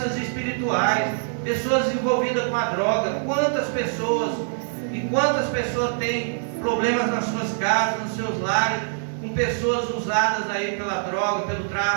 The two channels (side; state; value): left; silent; digital silence